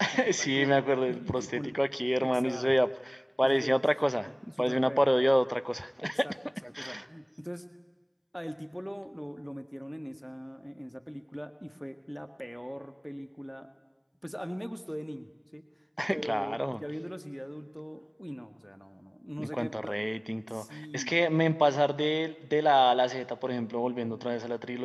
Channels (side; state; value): both; identical; correlation 1.00